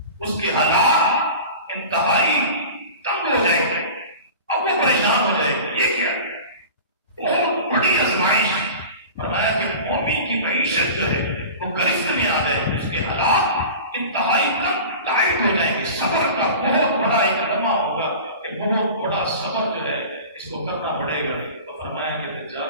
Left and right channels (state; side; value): inverted; both; correlation -0.36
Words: اس کے حالات انتہائی تنگ ہو جائیں گے. اب وہ پریشان ہو جائے گی. یہ کیا بہت بڑی آزمائش. فرمایا کہ مومن کی معیشت جو ہے وہ گرفت میں آ جائے گی، اس کے حالات انتہائی ٹائٹ ہو جائیں گے. صبر کا بہت بڑا ایک لمحہ ہوگا کہ بہت بڑا صبر جو ہے اس کو کرنا پڑے گا. تو فرمایا کہ دجال